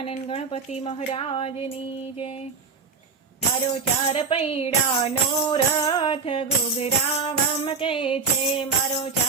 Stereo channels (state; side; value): quieter; left; 5.0 dB